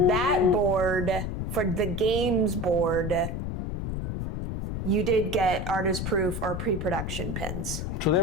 board, for the games board, you did get artist proof or pre-production pins. So they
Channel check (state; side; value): noise; left; rumble, 3 dB below the sound